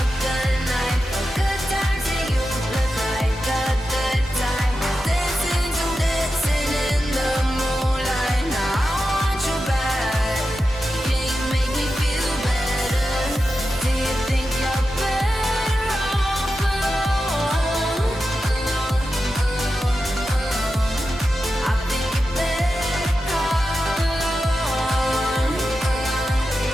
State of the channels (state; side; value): normal; both; correlation 0.91